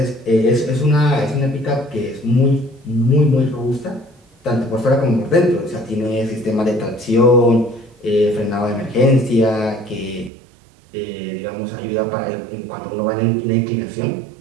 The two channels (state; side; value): drops out; left; at 10.3 s